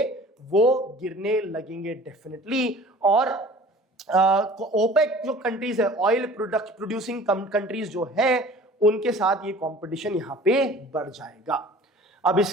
वो गिरने लगेंगे डेफिनेटली, और ओपेक जो कंट्रीज है, ऑयल प्रोड्यूसिंग कंट्रीज जो है, उनके साथ ये कंपटीशन यहां पे बढ़ जाएगा। अब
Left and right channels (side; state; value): both; normal; correlation 0.46